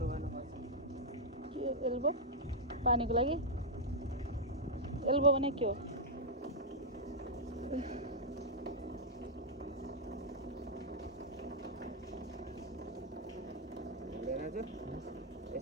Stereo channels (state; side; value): normal; both; correlation -0.05